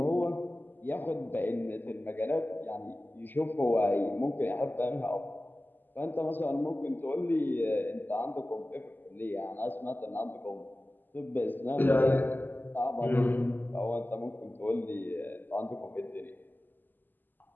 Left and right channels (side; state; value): right; late; 0.089 ms